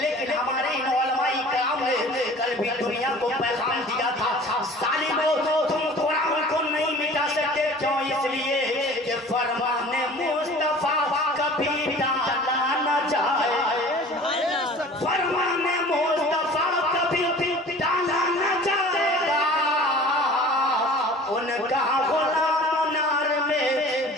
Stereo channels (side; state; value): both; normal; correlation 0.45